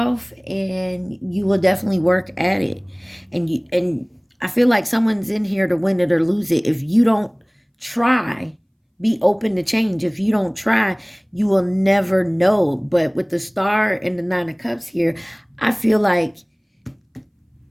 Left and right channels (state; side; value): identical; both; correlation 1.00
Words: and you will definitely work at it. And I feel like someone's in here to win it or lose it. If you don't try, be open to change. If you don't try, you will never know. But with the Star and the Nine of Cups here, I feel like